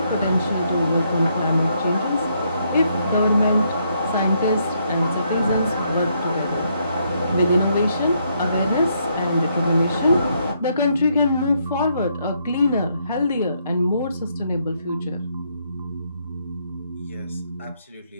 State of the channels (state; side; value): inverted; both; correlation -0.74